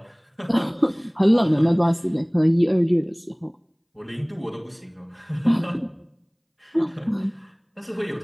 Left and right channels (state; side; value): identical; both; correlation 1.00